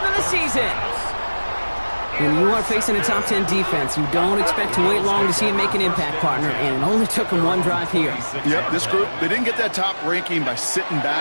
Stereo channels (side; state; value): both; inverted; correlation -1.00